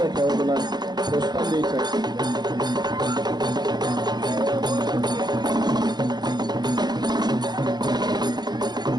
खेळाडूला प्रोत्साहन द्यायचं आहे.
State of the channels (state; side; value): late; left; 0.20 ms